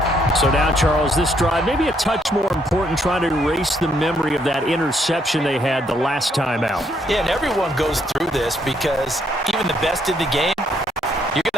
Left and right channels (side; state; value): both; normal; correlation 0.71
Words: So now, Charles, this drive maybe a touch more important, trying to erase the memory of that interception they had the last time out. Yeah, and everyone goes through this because even the best in the game, you're